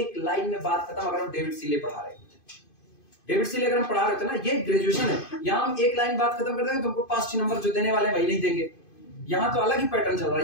लाइन में बात खत्म। अगर हम डेविड सीले पढ़ा रहे होते, डेविड सीले अगर हम पढ़ा रहे थे ना, ये ग्रेजुएशन है, यहाँ हम एक लाइन बात खत्म कर देंगे, तुमको 5-6 नंबर जो देने वाले हैं वही नहीं देंगे। यहाँ तो अलग ही पैटर्न चल रहा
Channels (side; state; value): right; late; 2.5 ms